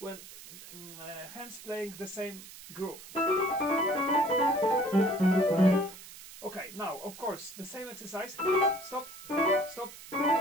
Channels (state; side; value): noise; right; hiss, 16 dB below the sound